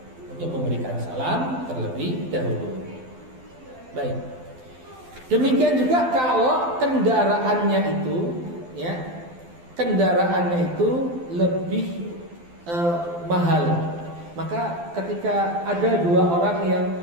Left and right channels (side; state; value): left; late; 12 ms